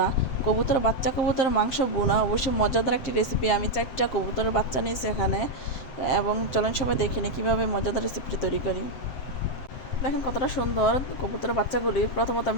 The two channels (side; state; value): right; late; 7.7 ms